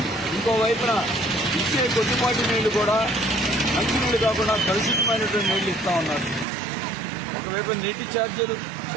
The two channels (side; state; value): left; drops out; at 6.5 s